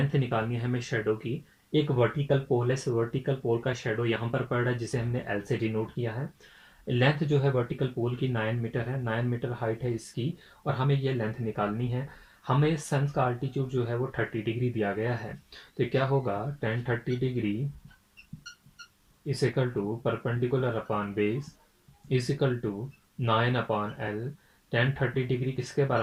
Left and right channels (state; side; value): identical; both; correlation 1.00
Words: निकालनी है हमें शेडो की। एक वर्टिकल पोल है, वर्टिकल पोल का शेडो यहाँ पर पड़ रहा है जिसे हमने एल से डिनोट किया है। लेंथ जो है वर्टिकल पोल की 9 मीटर है, 9 मीटर हाइट है इसकी, और हमें ये लेंथ निकालनी है। हमें सन का आल्टीट्यूड जो है वो 30 डिग्री दिया गया है, तो क्या होगा, tan 30 degree is equal to perpendicular upon base is equal to 9 upon L. tan 30 degree किसके